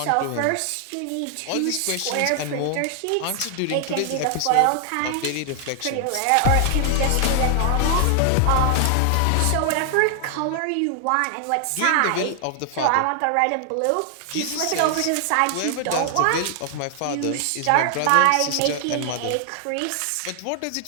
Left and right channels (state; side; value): different; both; correlation 0.00